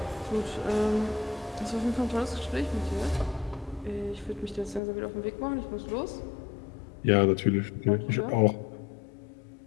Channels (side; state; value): right; drops out; at 4.8 s